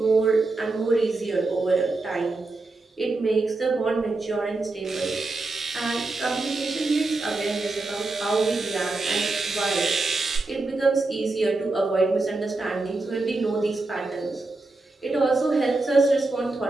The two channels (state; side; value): quieter; left; 3.3 dB